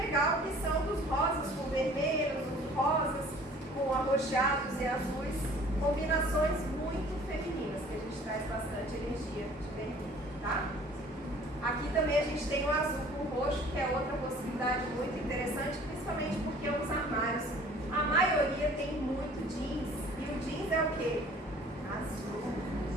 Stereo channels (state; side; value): normal; both; correlation 0.51